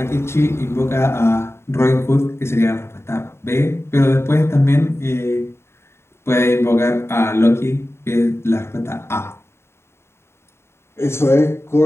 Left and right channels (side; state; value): right; late; 0.12 ms